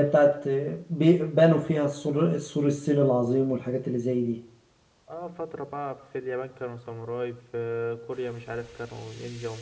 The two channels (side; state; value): both; identical; correlation 1.00